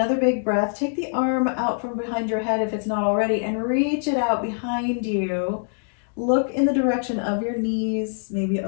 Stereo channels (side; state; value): right; silent; digital silence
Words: big breath. Take the arm out from behind your head if it's not already, and reach it out behind you. Look in the direction of your knees. Maybe